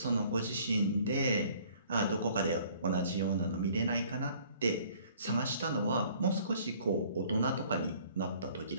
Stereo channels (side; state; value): both; inverted; correlation -0.56